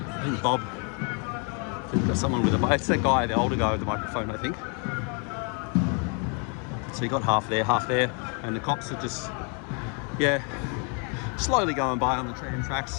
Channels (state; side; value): quieter; right; 37.1 dB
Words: think Bob, we've got someone with it's that guy, the older guy with the microphone, I think. So you got half there, and the cops are just, yeah, slowly going by on the tram